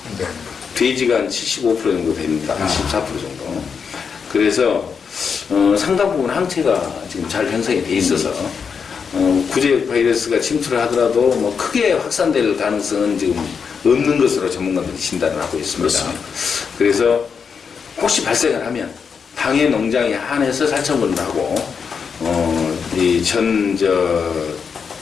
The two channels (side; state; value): right; quieter; 6.2 dB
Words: 네. 돼지가 한 75% 정도 됩니다. 14% 정도. 그래서 상당 부분 항체가 지금 잘 형성이 돼 있어서 구제역 바이러스가 침투를 하더라도 뭐 크게 확산될 가능성은 지금 없는 것으로 전문가들이 진단을 하고 있습니다. 그렇습니다. 그래서 혹시 발생을 하면 당해 농장에 한해서 살처분을 하고 이